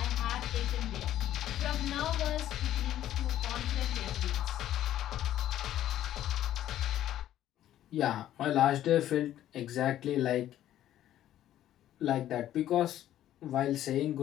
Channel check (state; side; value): quieter; right; 12.4 dB